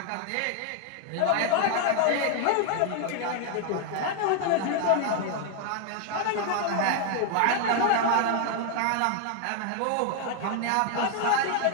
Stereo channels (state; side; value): different; both; correlation 0.00